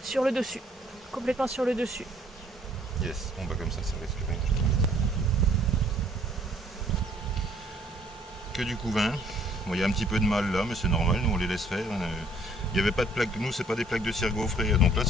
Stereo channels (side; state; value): both; normal; correlation 0.61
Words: sur le dessus. Complètement sur le dessus. Yes, bon bah comme ça risque rien. Que du couvain. Bon, il y a un petit peu de mal là, mais c'est normal, nous on les laisse faire. Il n'y avait pas de plaques, nous c'est pas des plaques de cire gaufrée, donc là